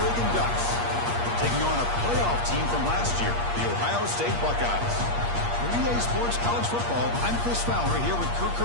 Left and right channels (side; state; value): left; late; 8.5 ms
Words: Ducks, taking on a playoff team from last year, the Ohio State Buckeyes. For EA Sports College Football, I'm Chris Fowler here with Kirk